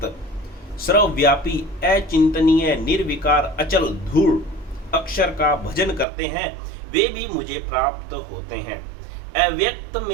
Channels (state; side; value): drops out; left; at 6.1 s